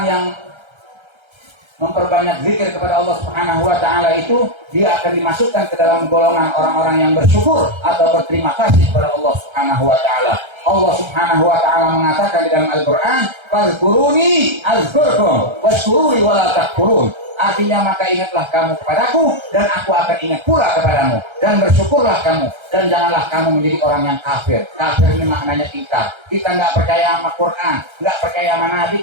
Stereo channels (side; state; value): left; late; 1.3 ms